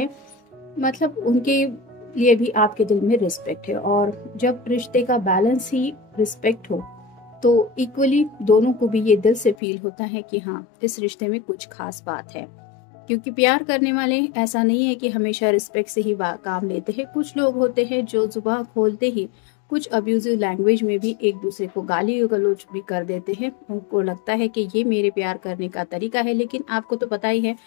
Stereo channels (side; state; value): right; drops out; at 9.6 s